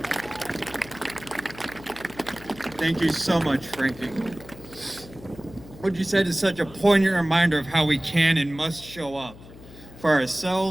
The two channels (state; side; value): noise; left; hum, 18 dB below the sound